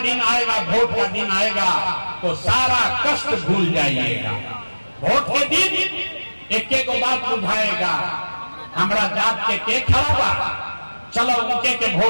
दिन आएगा, वोट का दिन आएगा, तो सारा कष्ट भूल जाइएगा। वोट के दिन एक एक बात बुझाएगा, हमारा जात के खड़ा बा, चलो उनके के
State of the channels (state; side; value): inverted; both; correlation -1.00